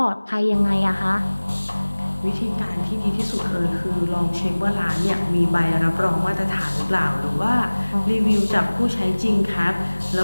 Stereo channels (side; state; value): both; inverted; correlation -1.00